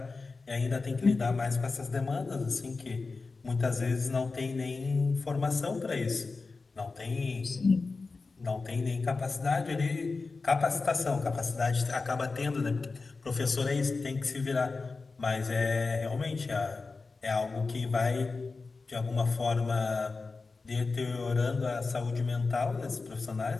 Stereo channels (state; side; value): quieter; right; 4.0 dB